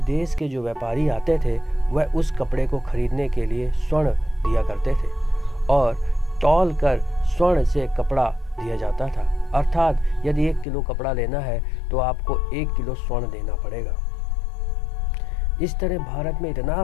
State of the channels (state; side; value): drops out; right; at 10.7 s